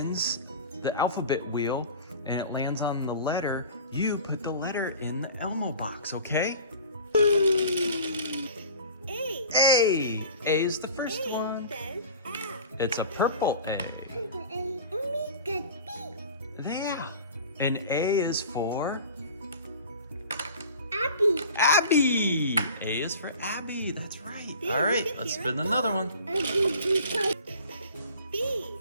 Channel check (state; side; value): inverted; both; correlation -0.41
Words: the alphabet wheel and it lands on the letter. You put the letter in the Elmo box, okay? A. A. A is the first one. It's a purple A. Yeah. And A is for? Abby. A is for Abby. That's right. All right, let's spin another one.